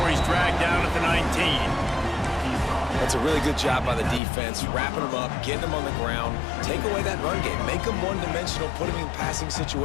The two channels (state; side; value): drops out; right; at 4.2 s